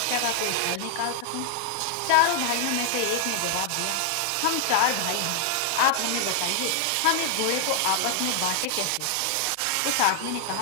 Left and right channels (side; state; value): both; different; correlation 0.00